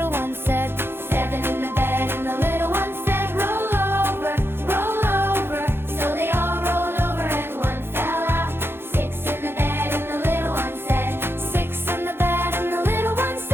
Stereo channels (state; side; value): late; left; 0.11 ms